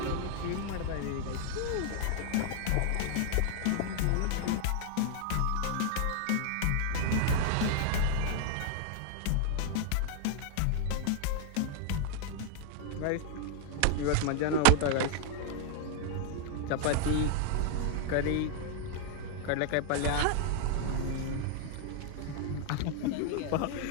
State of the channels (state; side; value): different; both; correlation 0.00